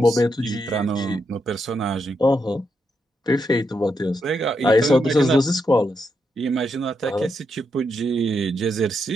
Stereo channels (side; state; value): both; normal; correlation 0.82